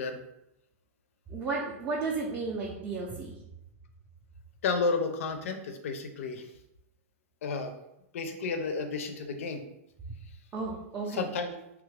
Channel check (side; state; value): both; normal; correlation -0.12